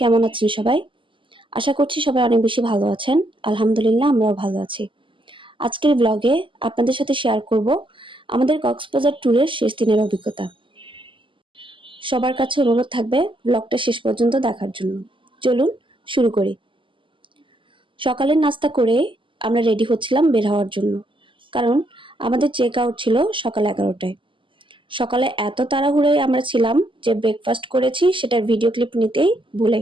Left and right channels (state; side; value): late; left; 0.25 ms